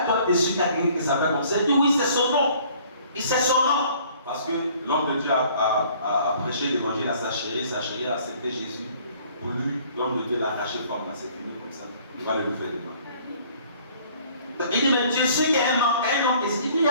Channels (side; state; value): both; inverted; correlation -0.56